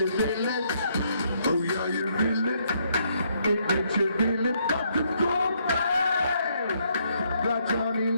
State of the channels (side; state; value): both; inverted; correlation -0.72